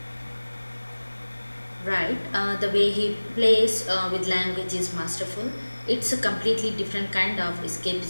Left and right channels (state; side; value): inverted; both; correlation -1.00